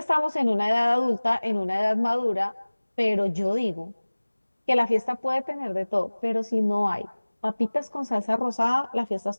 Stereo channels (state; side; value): inverted; both; correlation -1.00